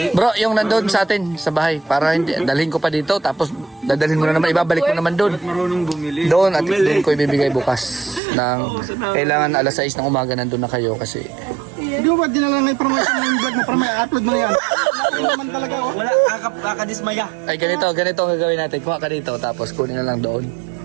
Bro, yung nandun sa atin, sa bahay, para hindi, dalhin ko pa dito, tapos dadalhin mo na naman, ibabalik mo naman doon. Marunong bumili. Doon, at doon ko ibibigay bukas. Kailangan alas 6 ng umaga nandun na kayo kasi... Hindi mo ba dinala na information ng vlog mo para may upload mo na yan? Hindi naman talaga oh. Wala, kakadismaya. Ay, ganito ang gagawin natin. Kuha ka dito, tapos kunin na lang doon.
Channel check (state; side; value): drops out; left; at 8.2 s